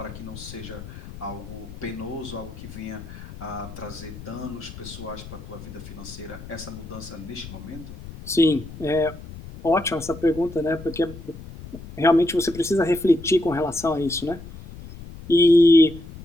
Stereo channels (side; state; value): left; noise; rumble, 14 dB below the sound